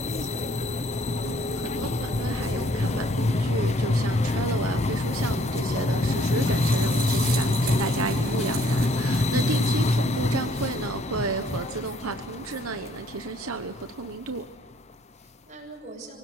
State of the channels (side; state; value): both; normal; correlation 0.62